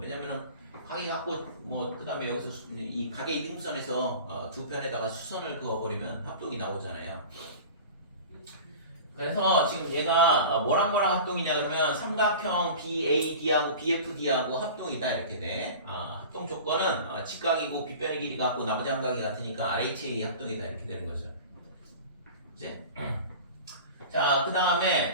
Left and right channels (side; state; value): both; inverted; correlation -0.37